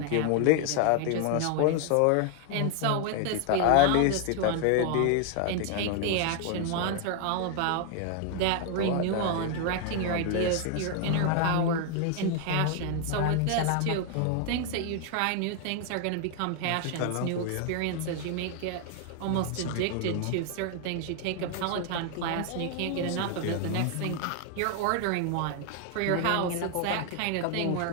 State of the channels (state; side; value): different; both; correlation 0.00